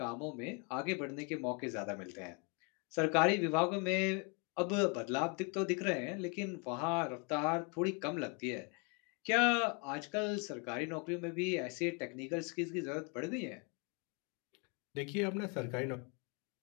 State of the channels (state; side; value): quieter; right; 34.4 dB